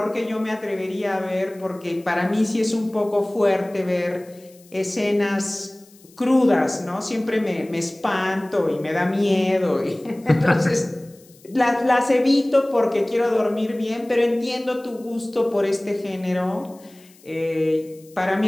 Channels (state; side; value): noise; left; hiss, 27 dB below the sound